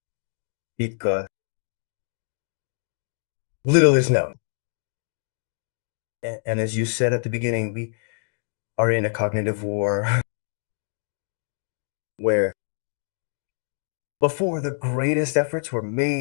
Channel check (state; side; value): silent; right; digital silence